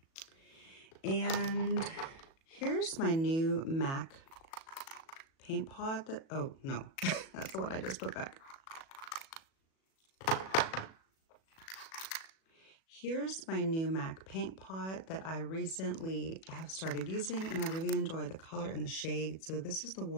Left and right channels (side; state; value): right; late; 37 ms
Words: And here's my new MAC paint pot that, oh no, that's the one I just put back. Here's my new MAC paint pot that I recently have started using, and I really enjoy the color and the shade. So this is the